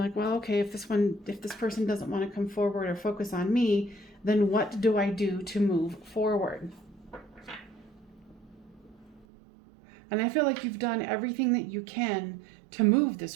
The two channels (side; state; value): left; drops out; at 9.2 s